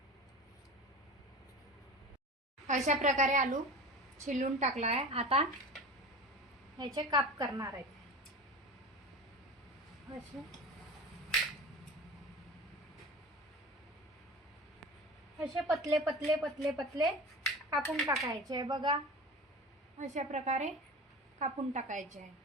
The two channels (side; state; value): both; normal; correlation 0.33